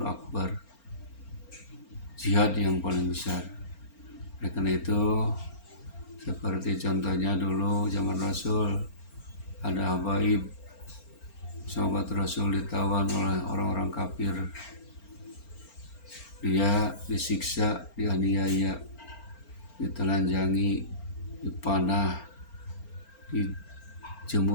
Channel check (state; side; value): late; right; 4.4 ms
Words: akbar, jihad yang paling besar. Oleh karena itu, seperti contohnya dulu zaman Rasul, ada Habaib, sahabat Rasul ditawan oleh orang-orang kafir. Dia disiksa, dianiaya, ditelanjangi, dipanah,